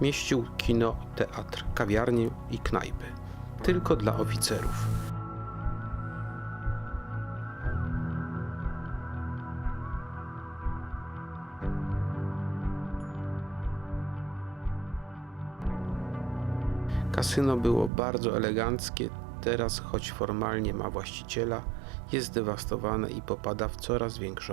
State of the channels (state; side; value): drops out; left; at 17.9 s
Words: Mieścił kino, teatr, kawiarnię i knajpy. Tylko dla oficerów. Kasyno było bardzo eleganckie, teraz choć formalnie ma właściciela, jest zdewastowane i popada w coraz